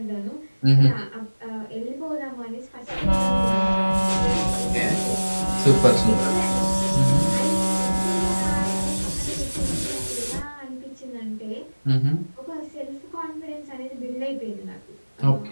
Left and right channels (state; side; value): inverted; both; correlation -1.00